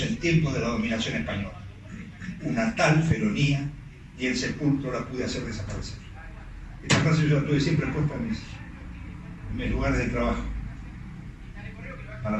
en tiempos de la dominación española. Una tal felonía ni el sepulcro la pude hacer desaparecer. Esta frase yo la tuve siempre puesta en mis lugares de trabajo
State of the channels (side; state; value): both; identical; correlation 1.00